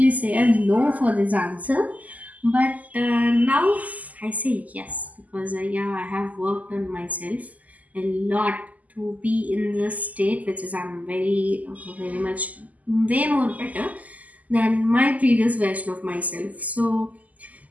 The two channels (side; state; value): left; late; 0.077 ms